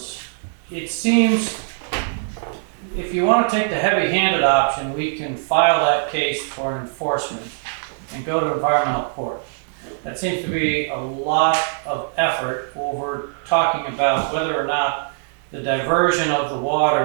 it seems if you want to take the heavy-handed option, we can file that case for enforcement and go to environmental court. That seems to be a lot of effort over talking about whether or not the diversion of the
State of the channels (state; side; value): silent; left; digital silence